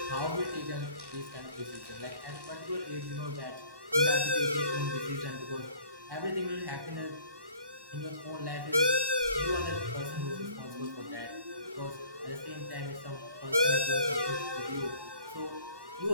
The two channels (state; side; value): late; left; 1.1 ms